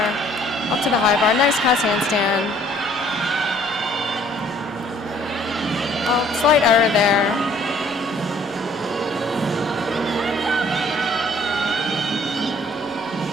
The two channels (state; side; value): normal; both; correlation 0.59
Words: up to the high bar. Nice pass handstand. Oh, slight error there.